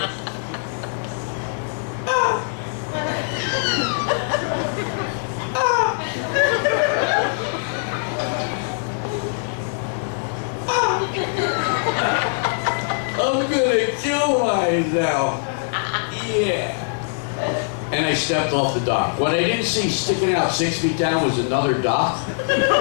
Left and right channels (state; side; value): silent; right; 64 dB below the other